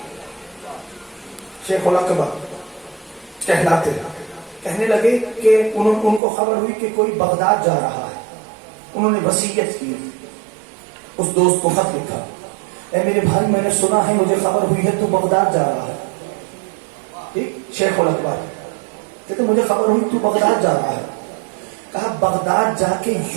شیخ الاکبر کہلاتے کہنے لگے کہ ان کو خبر ہوئی کہ کوئی بغداد جا رہا ہے. انہوں نے وصیت کی، اس دوست کو خط لکھا، اے میرے بھائی میں نے سنا ہے، مجھے خبر ہوئی ہے تو بغداد جا رہا ہے. ٹھیک، شیخ الاکبر کہتے مجھے خبر ہوئی تو بغداد جا رہا ہے. کہا بغداد جا کے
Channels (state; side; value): drops out; left; at 6.2 s